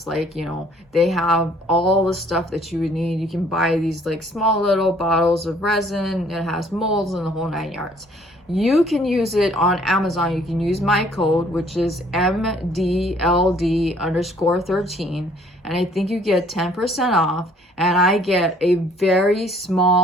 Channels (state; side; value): normal; both; correlation 0.60